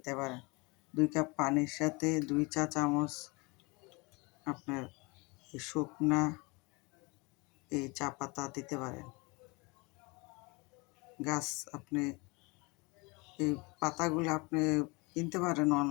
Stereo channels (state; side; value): quieter; right; 27.3 dB